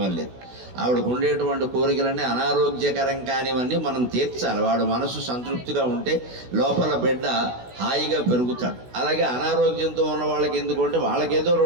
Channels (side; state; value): left; late; 16 ms